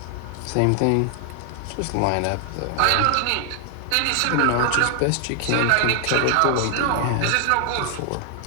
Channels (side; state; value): both; different; correlation 0.00